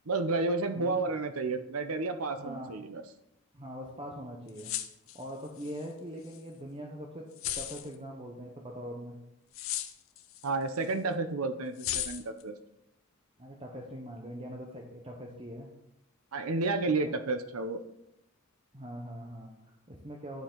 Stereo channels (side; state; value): both; normal; correlation -0.02